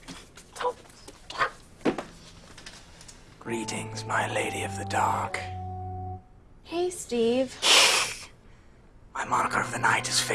Greetings, my lady of the dark. Hey, Steve. My moniker of the night is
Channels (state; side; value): identical; both; correlation 1.00